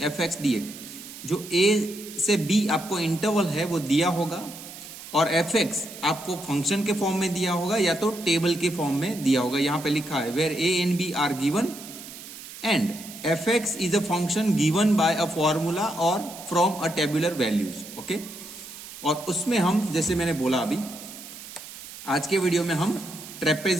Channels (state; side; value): noise; right; hiss, 14 dB below the sound